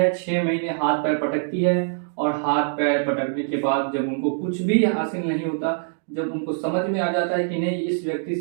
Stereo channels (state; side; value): silent; left; digital silence